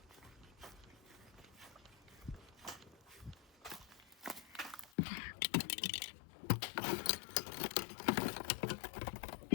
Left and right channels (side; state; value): right; drops out; at 4.9 s